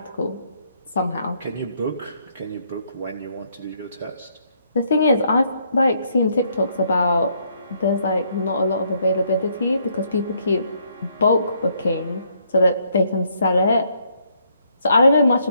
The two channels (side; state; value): both; inverted; correlation -0.70